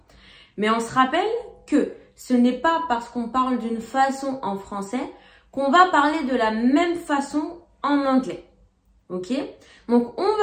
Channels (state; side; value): identical; both; correlation 1.00